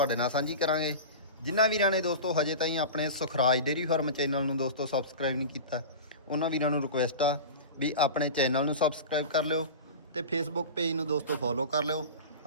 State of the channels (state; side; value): inverted; both; correlation -0.30